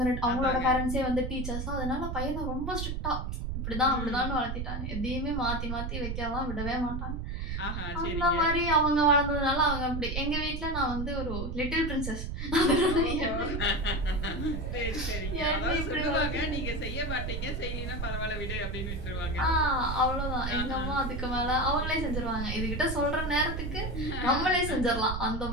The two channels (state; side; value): noise; right; rumble, 4 dB below the sound